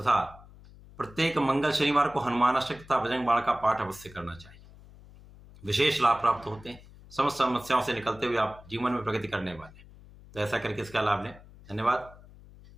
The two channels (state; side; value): noise; left; hum, 21 dB below the sound